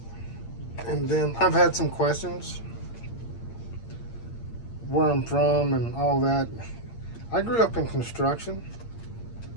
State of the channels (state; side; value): late; right; 8.7 ms